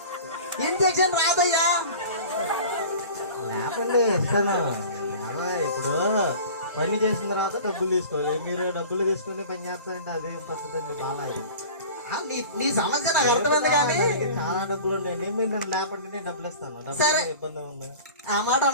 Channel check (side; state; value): both; inverted; correlation -0.39